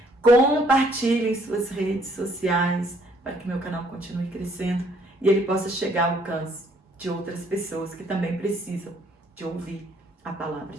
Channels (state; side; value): normal; both; correlation 0.64